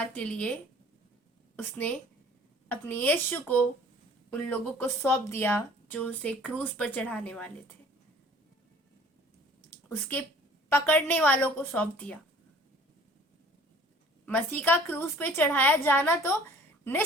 के लिए उसने अपने यीशु को उन लोगों को सौंप दिया जो उसे क्रूस पर चढ़ाने वाले थे। उसके पकड़ने वालों को सौंप दिया। मसीह का क्रूस पे चढ़ाया जाना तो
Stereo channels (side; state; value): both; normal; correlation 0.51